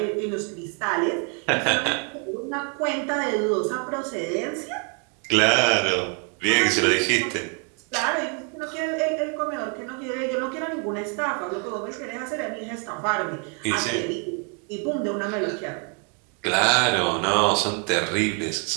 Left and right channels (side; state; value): left; quieter; 37.1 dB